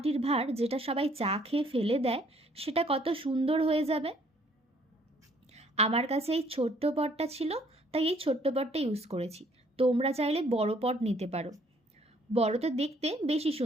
ভাঁড় যেটা সবাই চা খেয়ে ফেলে দেয় সেটা কত সুন্দর হয়ে যাবে। আমার কাছে এই ছোট্ট পটটা ছিল, তাই এই ছোট্ট পটটা ইউজ করেছি। তোমরা চাইলে বড় পট নিতে পারো। বড়তে দেখতে বেশি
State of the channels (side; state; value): both; normal; correlation 0.63